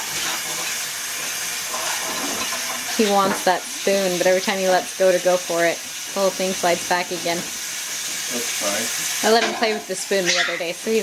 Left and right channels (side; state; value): both; identical; correlation 1.00